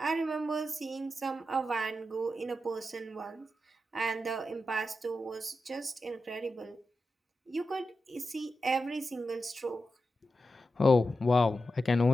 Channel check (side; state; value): both; normal; correlation 0.90